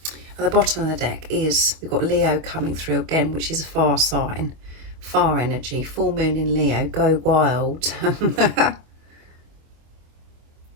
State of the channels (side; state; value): left; late; 25 ms